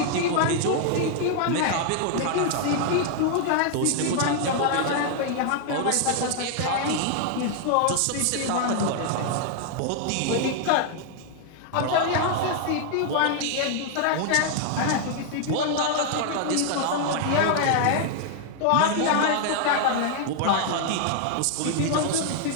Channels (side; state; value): both; different; correlation 0.00